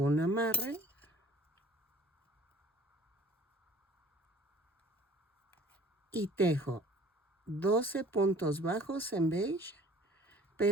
un amarre. Y tejo 12 puntos bajos en beige,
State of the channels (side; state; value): both; normal; correlation 0.49